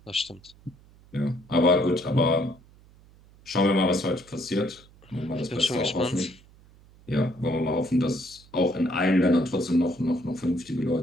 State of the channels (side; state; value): right; noise; hum, 26 dB below the sound